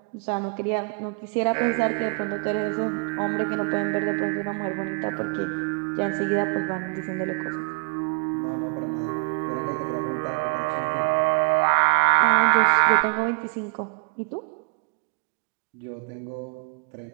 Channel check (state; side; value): quieter; left; 34.2 dB